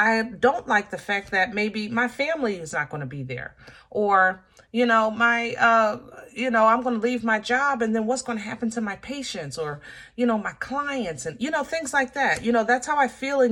don't like the fact that maybe my family is not going to be there, or, you know, I'm going to leave my job, and then what's going to happen to my patients, or, you know, my clients, and, you know, things like that. You know, that's how I feel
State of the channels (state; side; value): identical; both; correlation 1.00